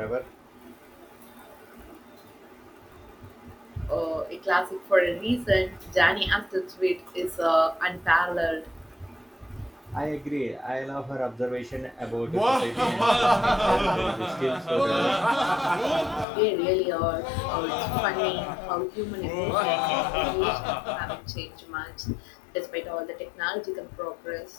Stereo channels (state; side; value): drops out; right; at 16.2 s